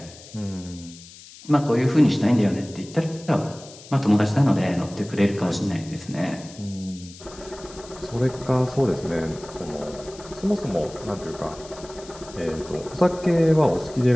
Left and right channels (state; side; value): noise; left; hiss, 19 dB below the sound